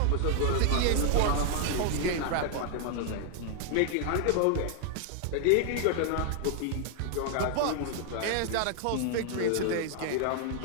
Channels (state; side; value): different; both; correlation 0.00